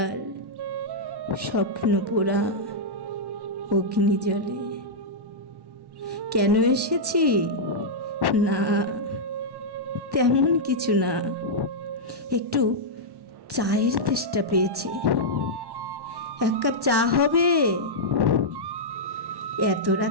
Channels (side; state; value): left; late; 1.1 ms